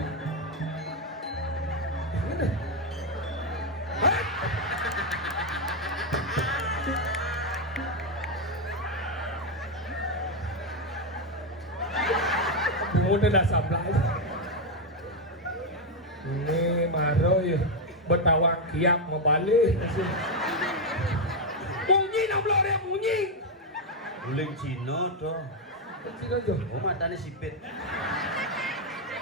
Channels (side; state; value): both; normal; correlation 0.04